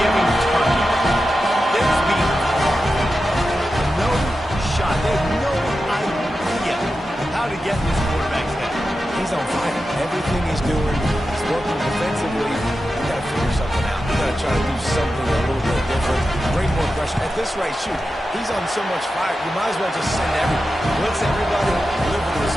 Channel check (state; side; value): normal; both; correlation 0.91